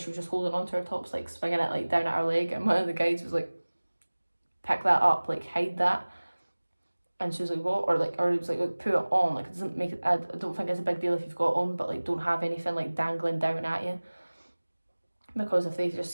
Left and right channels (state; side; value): inverted; both; correlation -1.00